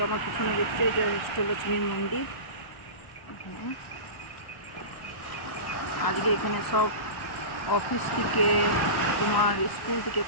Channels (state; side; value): late; right; 1.0 ms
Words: আমার পিছনে দেখছি এটা অষ্টলক্ষ্মীর মন্দির। এখানে আজকে এখানে সব অফিস থেকে, তোমার স্কুল থেকে,